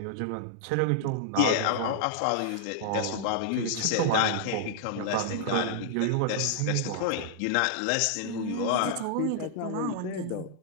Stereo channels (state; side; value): different; both; correlation -0.01